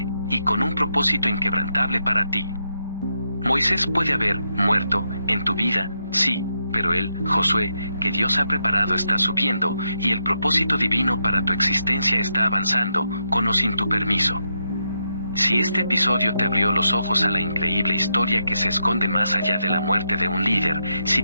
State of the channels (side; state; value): both; inverted; correlation -0.82